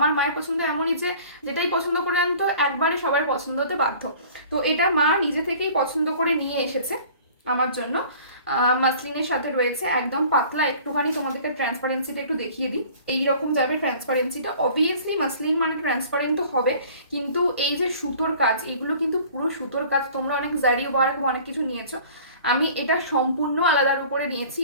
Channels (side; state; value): both; inverted; correlation -0.48